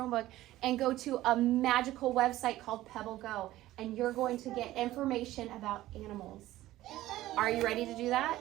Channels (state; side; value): quieter; left; 15.6 dB